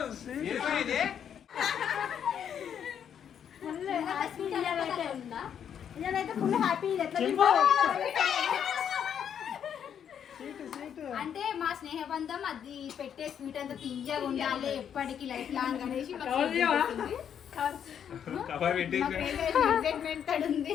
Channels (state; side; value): quieter; right; 8.6 dB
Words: ఏమైంది నేనైతే ఫుల్ హ్యాపీ అంటే మా స్నేహబంధం అది పెట్టే స్వీట్ అంతా తీయగా ఉండాలి ఎప్పటికీ లైఫ్ లాంగ్ అనేసి కవర్ పెట్టి ఎక్సైట్మెంట్